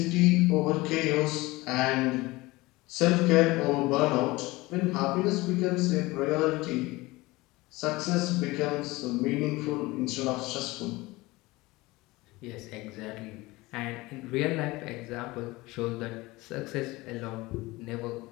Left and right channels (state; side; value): quieter; right; 21.1 dB